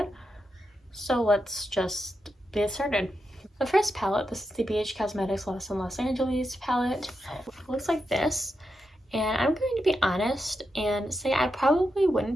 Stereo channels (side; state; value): both; normal; correlation 0.86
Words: So let's just get started. The first palette, this is the BH Cosmetics Lost in Los Angeles palette. It looks like this. And I'm going to be honest and say I probably